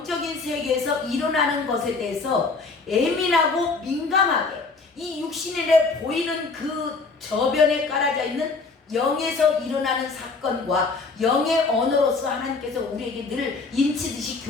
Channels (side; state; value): right; quieter; 4.1 dB